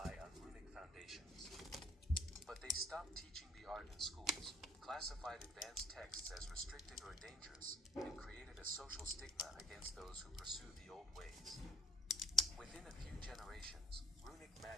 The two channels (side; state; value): both; normal; correlation 0.55